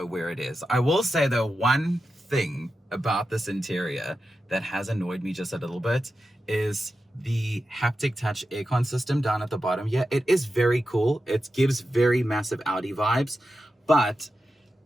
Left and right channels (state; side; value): normal; both; correlation 0.91